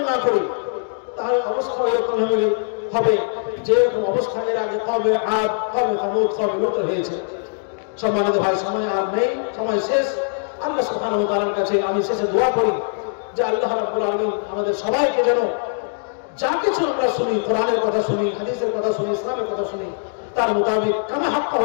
না করি, তাহলে অবস্থা এরকম হবে যে এরকম অবস্থা এর আগে কওমে আদ, কওমে সামূদ, কওমে লূত হয়েছে। সম্মানিত ভাই, সময় আর নেই, সময় শেষ। আল্লাহ সুবহানাহু ওয়া তাআলার কাছে আমি শেষে দোয়া করি যে আল্লাহ রাব্বুল আলামিন আমাদের সবাইকে যেন যা কিছু আমরা শুনি, কোরআনের কথা শুনি, হাদিসের কথা শুনি, ইসলামের কথা শুনি, তার মোতাবেক কামা হাক্কা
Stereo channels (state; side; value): silent; right; digital silence